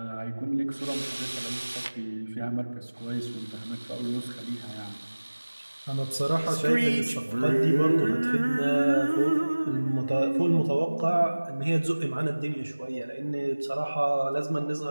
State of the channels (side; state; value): both; inverted; correlation -1.00